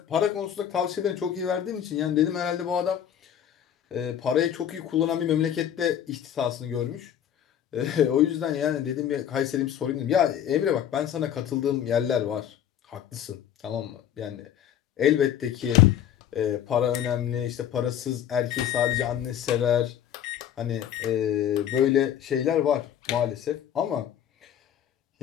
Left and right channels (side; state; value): right; quieter; 9.9 dB